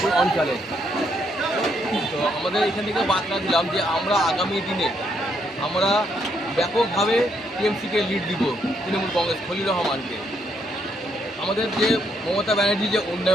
অঞ্চলে। তো আমাদের এখান থেকে বার্তা দিলাম যে আমরা আগামী দিনে আমরা ব্যাপকভাবে টিএমসিকে লিড দিব, তৃণমূল কংগ্রেস খলিলুর রহমানকে। আমাদের যে মমতা ব্যানার্জির যে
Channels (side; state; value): both; normal; correlation 0.74